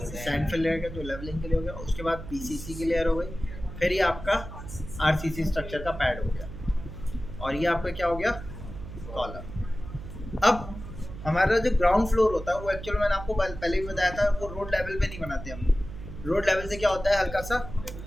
फिल रहेगा जो लेवलिंग के लिए हो गया, उसके बाद PCC की लेयर हो गई, फिर ये आपका RCC स्ट्रक्चर का पैड हो गया और ये आपका क्या हो गया, कॉलम। अब हमारा जो ग्राउंड फ्लोर होता है वो एक्चुअल मैंने आपको पहले भी बताया था, वो रोड लेवल पे नहीं बनाते हम। रोड लेवल से क्या होता है, हल्का सा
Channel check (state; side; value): noise; right; hum, 11 dB below the sound